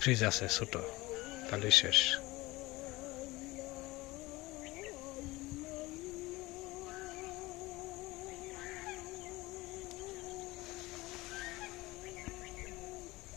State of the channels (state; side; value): quieter; right; 20.7 dB